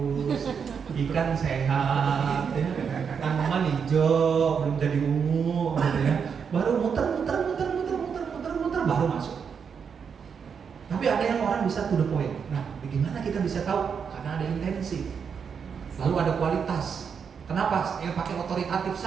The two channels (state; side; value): quieter; left; 6.6 dB